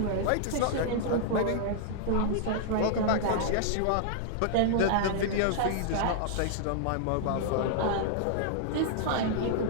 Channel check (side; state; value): both; different; correlation -0.01